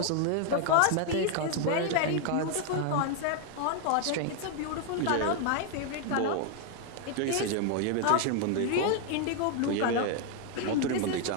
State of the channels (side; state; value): both; different; correlation 0.00